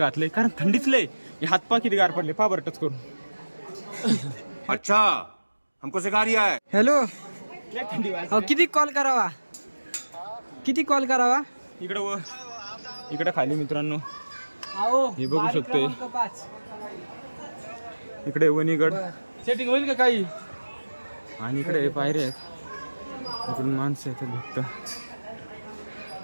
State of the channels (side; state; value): both; inverted; correlation -1.00